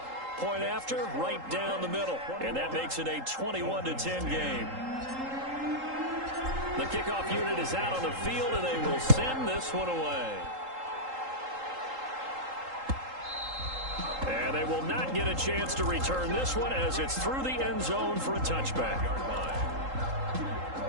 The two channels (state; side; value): late; left; 3.8 ms